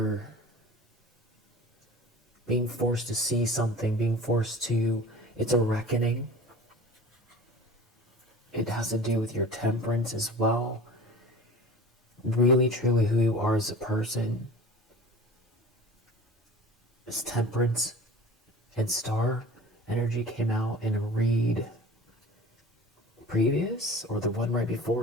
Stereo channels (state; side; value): normal; both; correlation 0.40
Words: being forced to see something, it's a reckoning. It has to do with your temperance as well. Really, truly who you are as a person. This temperance and star energy came out in a read previous, or the one right